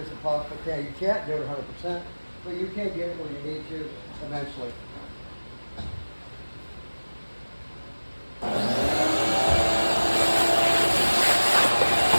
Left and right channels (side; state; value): both; inverted; correlation -1.00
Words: possible. You can't do it 100%, but you can get it where you need to eventually.